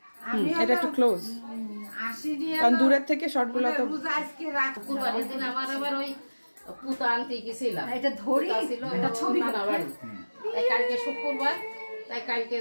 এটা একটু ক্লোজ, কারণ দূরের থেকে শর্টগুলো তো। শুক্রবারের দিন আমার আবার ওই পুতা আনতে গেছিলাম। এটা ধরি ছিল এটা ছবি না বাড়ি। তাই কালকে শুক্রবার, তাই কালকে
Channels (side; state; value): both; inverted; correlation -1.00